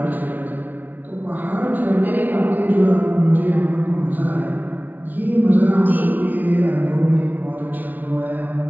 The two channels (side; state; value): left; late; 0.081 ms